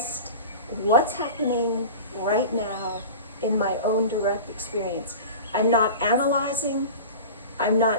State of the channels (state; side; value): inverted; both; correlation -0.34